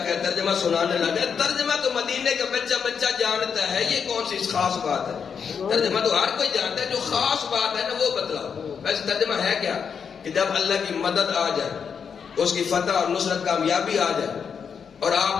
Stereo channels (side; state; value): right; quieter; 6.7 dB